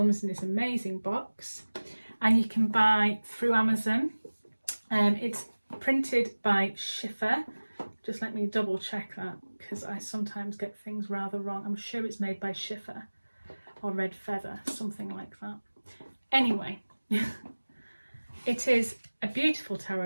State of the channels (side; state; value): both; inverted; correlation -1.00